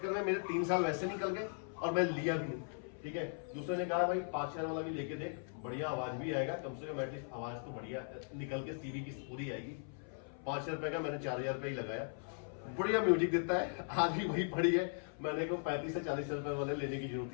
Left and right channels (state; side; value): silent; right; 52 dB below the other